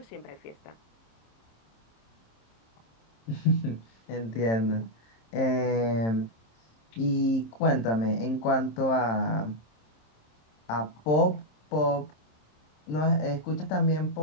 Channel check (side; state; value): right; late; 27 ms